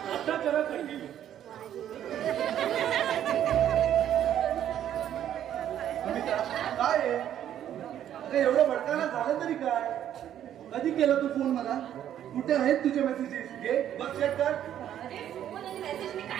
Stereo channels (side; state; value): left; quieter; 10.7 dB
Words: आता करा कंटिन्यू काय आहे अरे एवढं भडकायला झालं तरी काय कधी केला तू फोन मला कुठे आहेत तुझे मेसेजेस घे बघ चेक कर अरे फोन आणि मेसेज मी